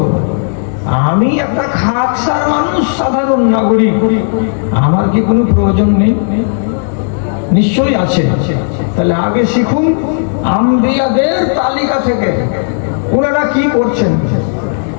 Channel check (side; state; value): right; silent; digital silence